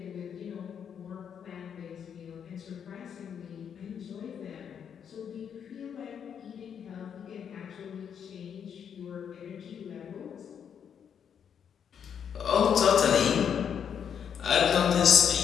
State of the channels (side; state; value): right; quieter; 7.9 dB